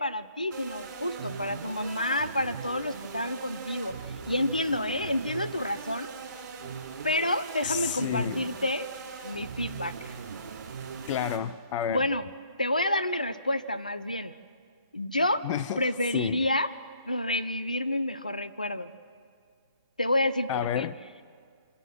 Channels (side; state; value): both; inverted; correlation -0.62